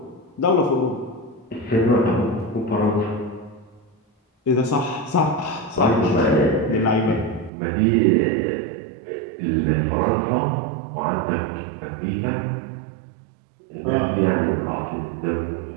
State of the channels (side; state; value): left; drops out; at 7.5 s